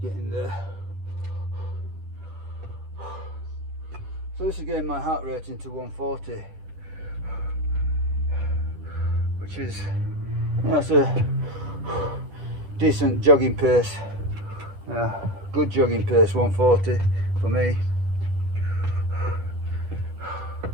getting there. So this is getting my heart rate into 140, which is, you know, it's a decent jogging pace. Yeah, good jogging pace, 140 for me.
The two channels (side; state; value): left; late; 10 ms